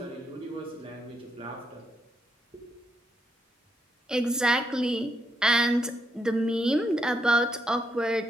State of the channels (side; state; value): both; normal; correlation 0.78